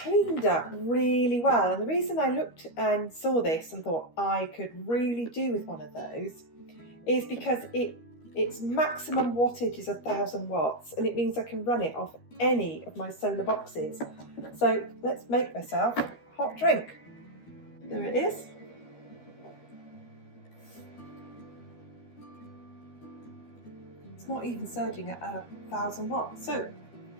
up really well, and the reason I looked and saw this and thought I could really do with one of those is because its maximum wattage is 1000 watts, and it means I can run it off any of my solar boxes. So let's make myself a hot drink. There it is. It's not even surging at 1000 watts. So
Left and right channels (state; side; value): late; right; 13 ms